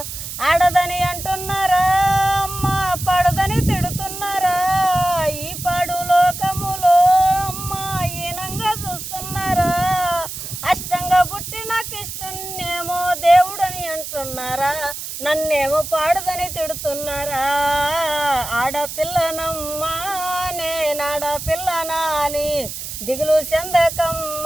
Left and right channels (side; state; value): right; noise; hiss, 8 dB below the sound